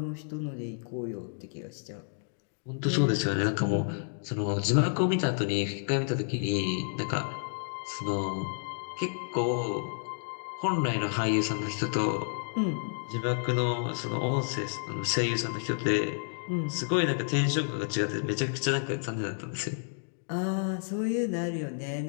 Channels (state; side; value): silent; right; digital silence